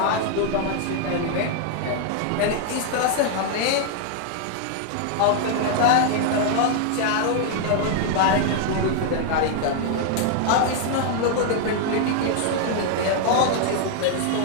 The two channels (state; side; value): different; both; correlation -0.01